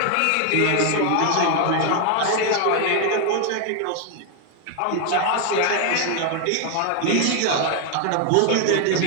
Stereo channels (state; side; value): different; both; correlation 0.01